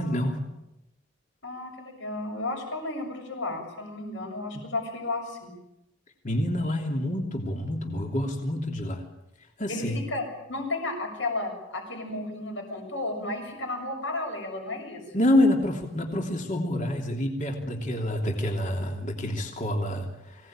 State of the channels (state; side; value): normal; both; correlation 0.54